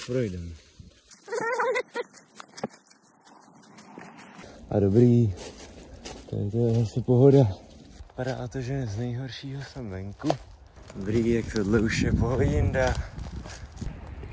projdeme. A dobrý, tady to je zase pohoda. Vypadá to, že z nejhoršího jsem venku. Dobrý, jak tohle už je pohodinda.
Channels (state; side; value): identical; both; correlation 1.00